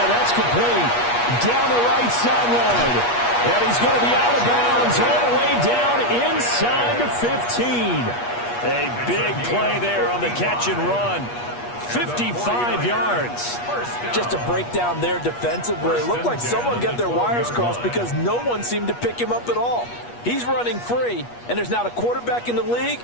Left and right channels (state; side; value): late; right; 8.4 ms